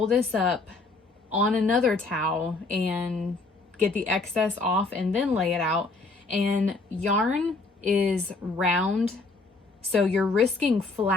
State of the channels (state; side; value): quieter; right; 3.7 dB